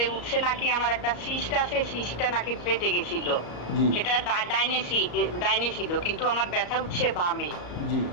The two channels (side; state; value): right; late; 34 ms